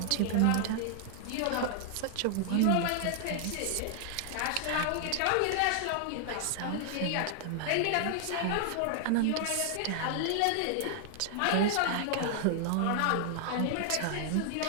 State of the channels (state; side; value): different; both; correlation 0.00